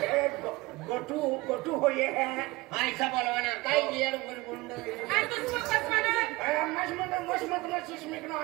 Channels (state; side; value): quieter; left; 21.6 dB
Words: गोटू गोटू हो ये है ऐसा बोलवाना काय येड गुंड